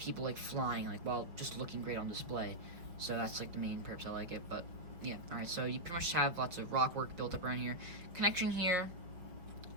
flying while just looking great on display. So that's the main purpose I like it. But yeah, alright, so you pretty much have lots of rock work built up around here. Connection here,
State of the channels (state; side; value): late; left; 5.6 ms